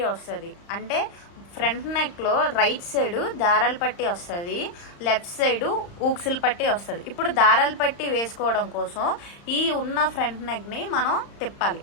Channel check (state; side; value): late; right; 35 ms